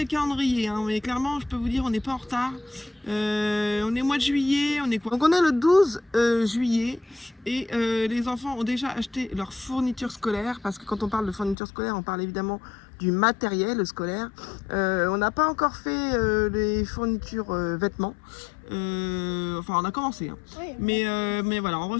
le calendrier, mais clairement, je peux vous dire, on n'est pas en retard. On est au mois de juillet, on est quoi? Donc, on est le 12 juillet et les enfants ont déjà acheté leurs fournitures scolaires parce que quand on parle de fournitures scolaires, on parle évidemment du matériel scolaire. On n'a pas encore fait les fournitures vêtements. Enfin, on a commencé, Oui, mais voilà, on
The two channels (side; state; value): right; drops out; at 11.6 s